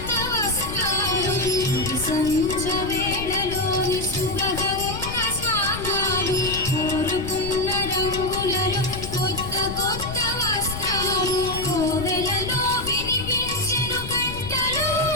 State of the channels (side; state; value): left; noise; rumble, 8 dB below the sound